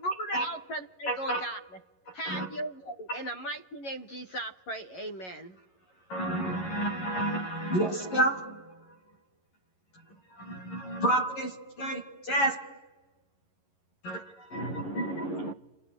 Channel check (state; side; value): late; right; 11 ms